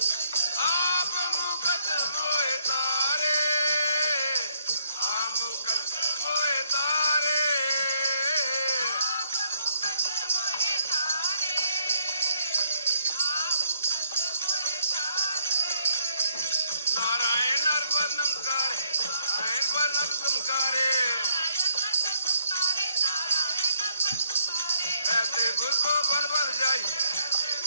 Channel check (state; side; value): inverted; both; correlation -0.71